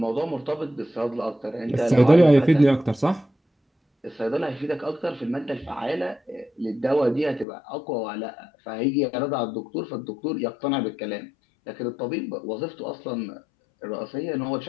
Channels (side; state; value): right; drops out; at 7.5 s